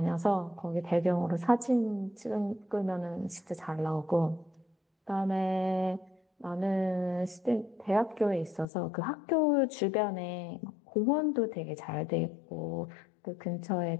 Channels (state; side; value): drops out; right; at 8.7 s